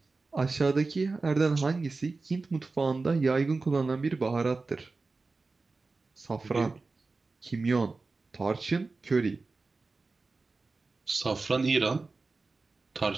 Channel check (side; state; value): left; quieter; 3.8 dB